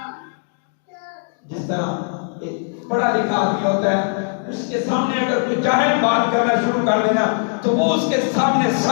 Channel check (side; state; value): right; silent; digital silence